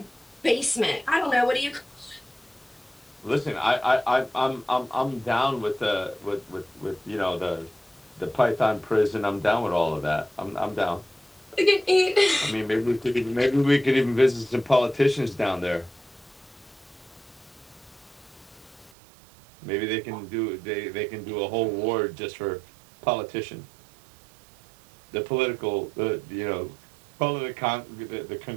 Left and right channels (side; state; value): left; drops out; at 18.9 s